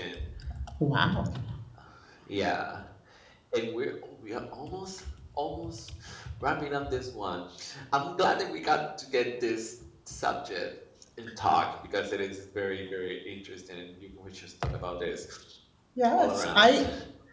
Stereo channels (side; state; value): both; identical; correlation 1.00